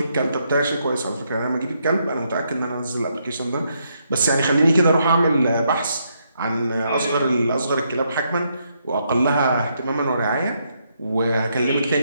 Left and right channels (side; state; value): both; inverted; correlation -0.76